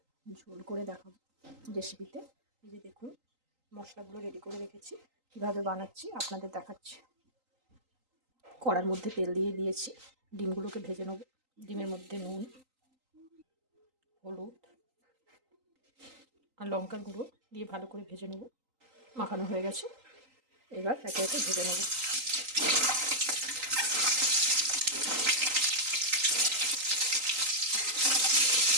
ঝোল করে দেখাবো রেসিপিতে। এই যে দেখুন, মশলাগুলো রেডি করে রেখেছি, কীভাবে বানাচ্ছি আপনাদের দেখাচ্ছি। কড়ার মধ্যে তেল দিয়ে দিয়েছি, ডিমগুলোকে ভেজে নেব। ডিমের মধ্যে নুন, হলুদ আর লঙ্কার গুঁড়ো দিয়ে ভালো করে ভেজে নেব। মাখানো হয়ে গেছে, এবার একে একে ভেজে নেব।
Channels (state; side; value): late; left; 3.8 ms